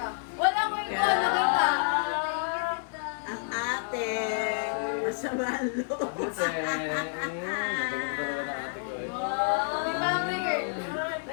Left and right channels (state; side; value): silent; right; digital silence